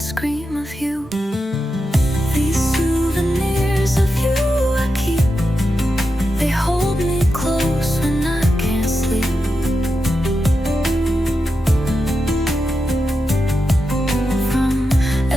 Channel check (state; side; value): normal; both; correlation 0.88